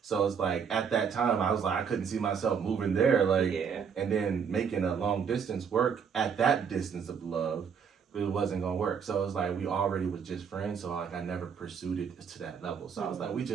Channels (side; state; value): left; quieter; 6.8 dB